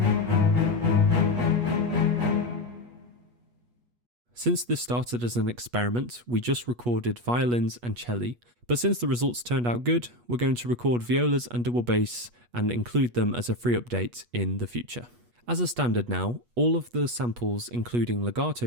Since this started as an experiment, we just recorded violins and celli, but since the results turned out good, we're going to record violas and double bass and include them as a free update in the future. As a standard now, all of the samples, including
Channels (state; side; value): late; left; 8.3 ms